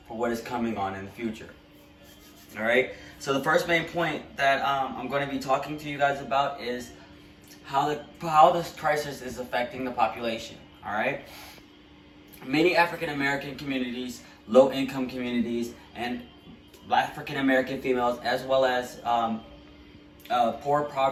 for what is coming on in the future. All right. So the first main point that I'm going to be talking to you guys about is how this crisis is affecting the population. All right. Many African American communities, low income communities, and African American females, as well as poor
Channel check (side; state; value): both; identical; correlation 1.00